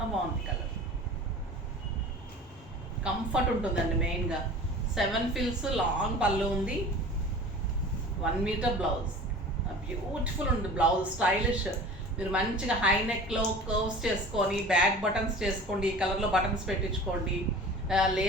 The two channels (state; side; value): normal; both; correlation 0.40